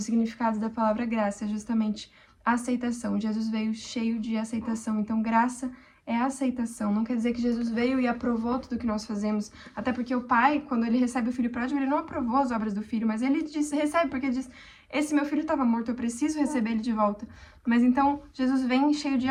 significados da palavra graça é justamente a aceitação. Jesus veio cheio de aceitação. Então, graça é a aceitação. Não quer dizer que Jesus veio e aprovou tudo que nós fazemos. Até porque o Pai, quando ele recebe o Filho pródigo, ele não aprovou as obras do Filho, mas ele recebe porque diz, esse meu filho estava morto, eu preciso receber ele de volta. Mas então, Jesus vem cheio de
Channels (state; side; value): identical; both; correlation 1.00